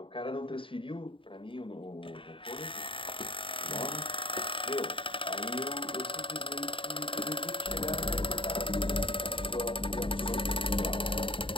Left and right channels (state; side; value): late; right; 0.25 ms